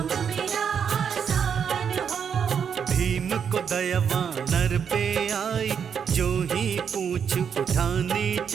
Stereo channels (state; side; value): quieter; left; 7.3 dB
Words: भीम को दया वानर पे आई, जो ही पूंछ उठानी